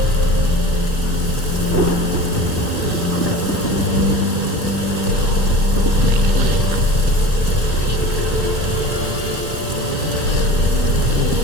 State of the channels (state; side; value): late; left; 3.3 ms